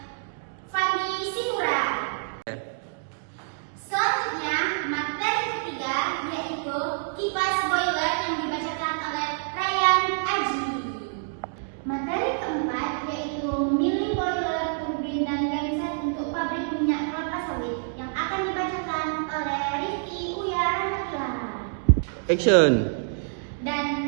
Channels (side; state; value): left; silent; digital silence